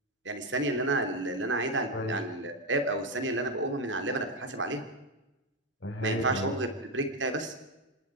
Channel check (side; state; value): both; normal; correlation 0.08